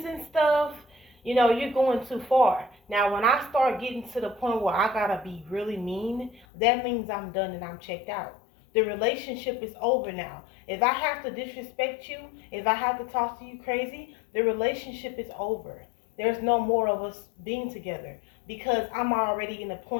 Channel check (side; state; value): right; drops out; at 6.5 s